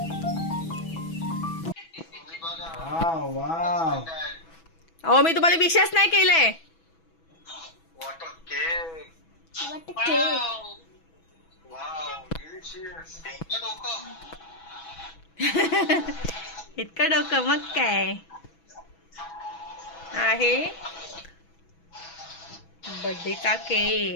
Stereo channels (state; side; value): late; right; 6.1 ms